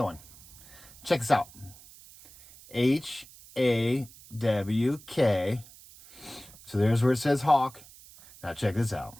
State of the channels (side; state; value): right; noise; hiss, 21 dB below the sound